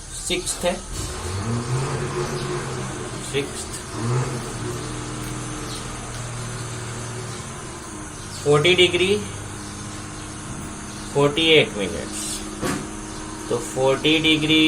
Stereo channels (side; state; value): both; identical; correlation 1.00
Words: सिक्स्थ है, 40 डिग्री 48 मिनट्स, तो 40